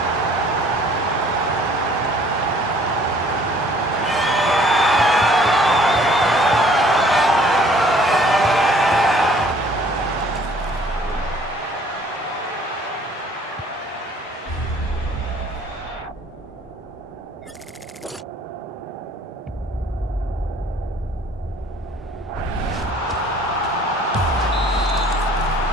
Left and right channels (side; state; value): both; normal; correlation 0.56